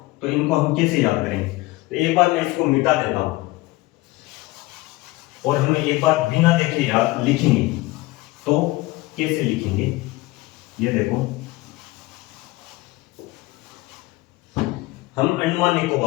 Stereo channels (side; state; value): right; quieter; 20.4 dB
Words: तो इनको हम कैसे याद करेंगे? तो एक बार मैं इसको मिटा देता हूं और हम एक बार बिना देखे याद लिखेंगे। तो कैसे लिखेंगे? ये देखो, हम अंडमान